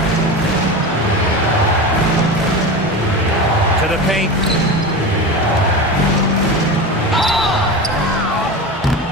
To the paint.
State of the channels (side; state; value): both; normal; correlation 0.26